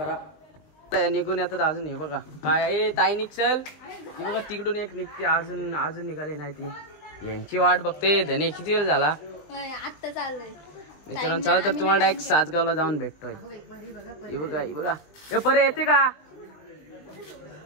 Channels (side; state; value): right; late; 19 ms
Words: निघून येतात अजून। हे बघा काय आहे ताई निघल, हे बघा तिकडून एक निघते, अजून निघाली नाही ती, यांची वाट बघते। धने किती वेळ झाला आता चाललोय मित्रांनो। चला तर तुम्हाला डायरेक्ट सासगावला जाऊन भेटतोय। हे बघा हे बघा हे परे येते का